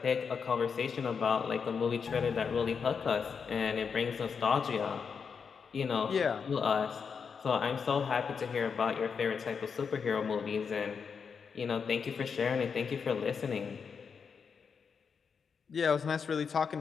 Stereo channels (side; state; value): right; quieter; 6.1 dB